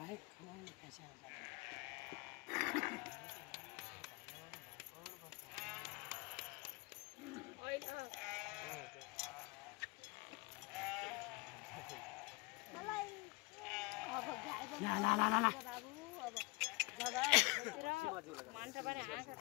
मान्छे पनि आँखा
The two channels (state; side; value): quieter; right; 26.2 dB